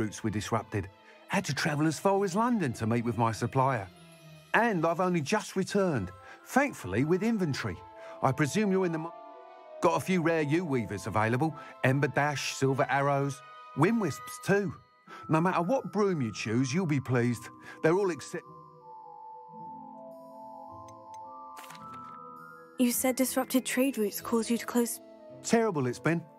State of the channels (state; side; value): identical; both; correlation 1.00